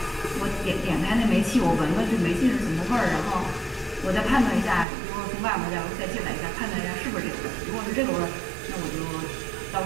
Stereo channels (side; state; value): left; drops out; at 4.9 s